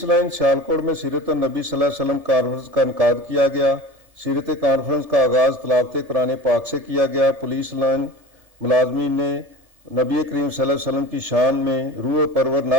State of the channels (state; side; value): late; left; 1.7 ms